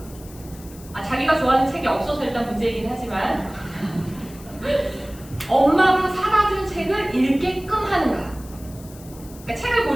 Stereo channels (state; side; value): noise; left; hiss, 20 dB below the sound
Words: 자기가 좋아하는 책이 없어서 일단 문제이긴 하지만 엄마가 사다 준 책을 읽게끔 하는가? 그러니까 책을